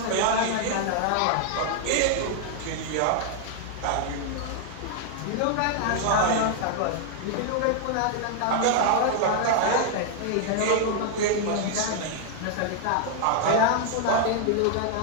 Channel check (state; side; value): different; both; correlation 0.00